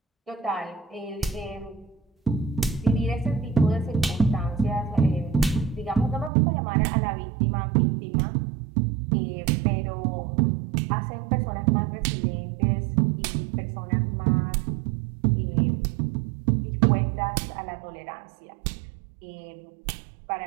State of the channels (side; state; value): left; drops out; at 6.3 s